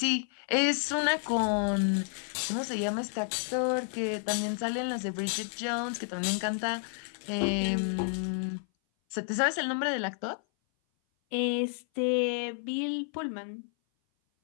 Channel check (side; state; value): right; silent; 56 dB below the other